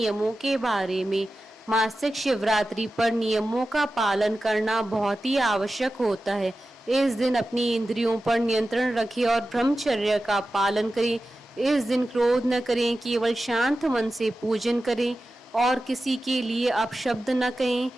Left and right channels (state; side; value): normal; both; correlation 0.93